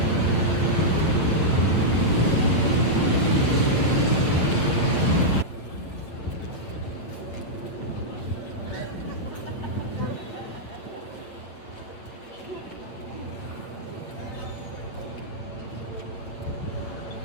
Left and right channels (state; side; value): late; right; 8.3 ms